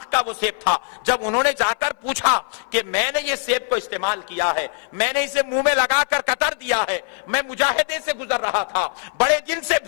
کا وہ سیب تھا۔ جب انہوں نے جا کر پوچھا کہ میں نے یہ سیب کو استعمال کیا ہے، میں نے اسے منہ میں لگا کر قطر دیا ہے، میں مجاہدے سے گزر رہا تھا، بڑے دن سے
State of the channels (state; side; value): silent; right; 58 dB below the other